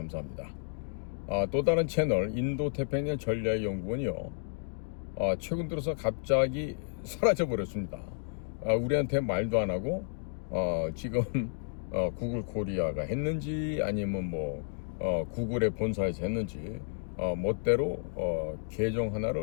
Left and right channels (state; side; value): silent; right; digital silence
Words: 또 다른 채널 인도태평양 전략연구원이요, 최근 들어서 갑자기 사라져 버렸습니다. 우리한테 말도 안 하고 지금 구글 코리아가 했는지 아니면 구글의 본사에서 했는지 멋대로 계정